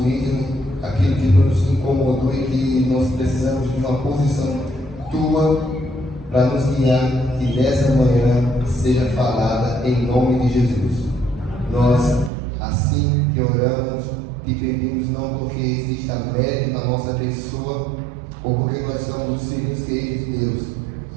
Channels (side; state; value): left; drops out; at 12.3 s